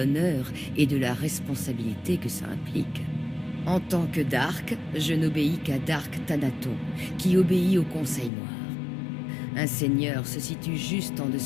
et de la responsabilité que ça implique. En tant que Dark, je n'obéis qu'à Dark Thanaton, qui obéit au Conseil Noir. Un seigneur se situe juste en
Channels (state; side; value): drops out; right; at 8.3 s